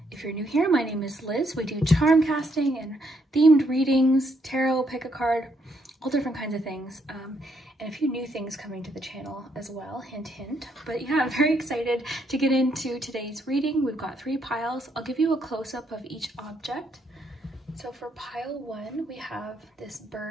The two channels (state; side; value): normal; both; correlation 0.74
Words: If you're new here, my name is Liz. We do charm casting and themed readings, tarot, pick a card, all different kinds of things. And a few new things coming to the channel as well, hint, hint. But yeah, I'm very excited to get into today's reading. We've got 3 piles. I'll give you a close-up of each object. So for pile 1, we have this